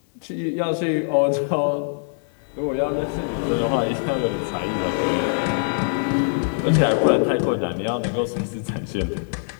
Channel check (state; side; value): silent; right; digital silence